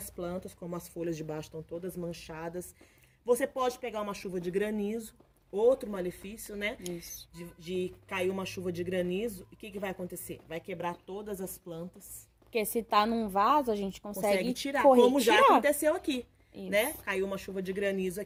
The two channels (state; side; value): identical; both; correlation 1.00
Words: plantas, como as folhas de baixo estão todas manchadas. Você pode pegar uma chuva de granizo, outro malefício, né? Isso. De cair uma chuva de granizo, e o que vai acontecer? Vai quebrar todas as plantas. Porque se tá num vaso, a gente consegue tirar, como já aconteceu aqui. Isso. Né? Caiu uma chuva de granizo